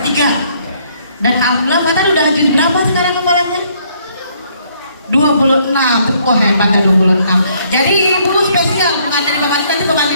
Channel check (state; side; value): inverted; both; correlation -0.66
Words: 3. Dan alhamdulillah Fatan udah juz berapa sekarang hafalannya? 26. Wah hebat ya 26. Jadi ibu spesial bukan dari Bapak, nanti Bapak